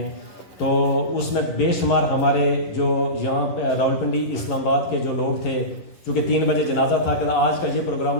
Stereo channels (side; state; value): right; late; 11 ms